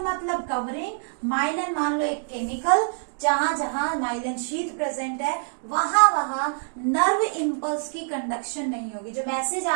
मतलब कवरिंग, माइलिन मान लो एक केमिकल, जहां जहां माइलिन शीथ प्रेजेंट है वहां वहां नर्व इंपल्स की कंडक्शन नहीं होगी। जो मैसेज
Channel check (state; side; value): silent; left; digital silence